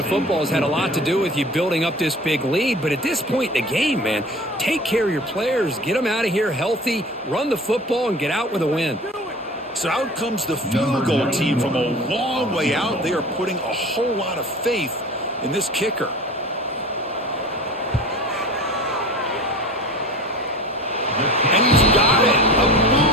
football has had a lot to do with you building up this big lead, but at this point in the game, man, take care of your players, get them out of here healthy, run the football, and get out with a win. So out comes the field goal team from a long way out. They are putting a whole lot of faith in this kicker. And he's got it. A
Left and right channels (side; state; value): both; normal; correlation 0.39